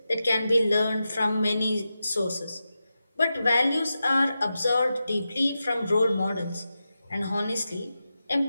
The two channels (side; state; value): both; inverted; correlation -0.91